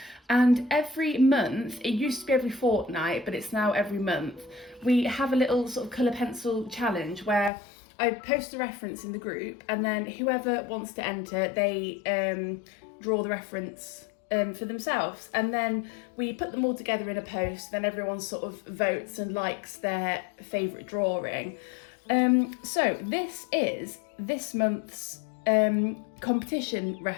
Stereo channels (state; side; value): drops out; right; at 7.5 s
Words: And every month, it used to be every fortnight, but it's now every month, we have a little sort of colour pencil challenge where I post a reference in the group, and then whoever wants to enter, they draw the reference for themselves, and then we put them all together in a post. Then everyone sort of votes and likes their favourite drawing. So this is this month's competition